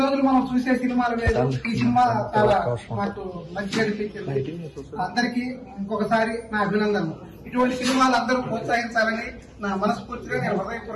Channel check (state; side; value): identical; both; correlation 1.00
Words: మనం చూసే సినిమాలు లేదు, ఈ సినిమా చాలా మాకు మంచిగా అనిపించింది. అందరికీ ఇంకొకసారి నా అభినందనలు. ఇటువంటి సినిమాలు అందరూ ప్రోత్సహించాలని నా మనస్ఫూర్తిగా నేను